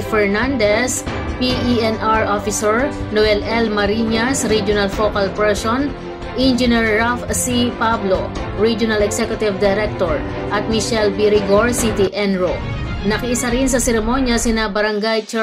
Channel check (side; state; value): both; identical; correlation 1.00